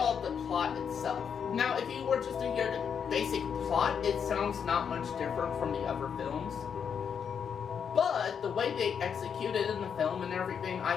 the plot itself. Now, if you were just to hear the basic plot, it sounds not much different from the other films. But the way they execute it in the film and everything,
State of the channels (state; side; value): quieter; right; 7.2 dB